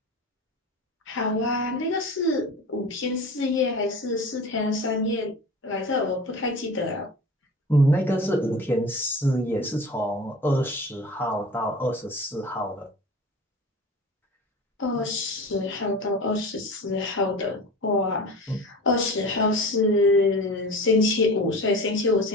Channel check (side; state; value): both; normal; correlation 0.35